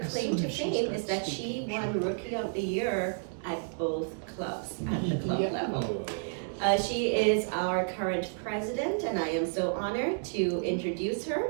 claim to fame is that she won Rookie of the Year at both clubs, at the club level. She is our current president, and I am so honored to introduce her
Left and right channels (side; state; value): left; silent; digital silence